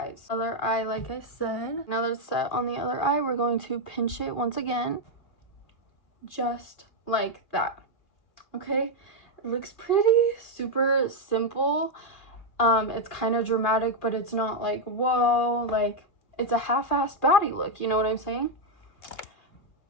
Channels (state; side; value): late; right; 2.4 ms